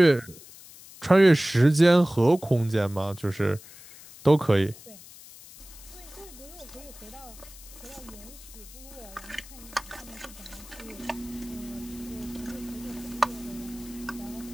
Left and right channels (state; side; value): noise; left; hiss, 19 dB below the sound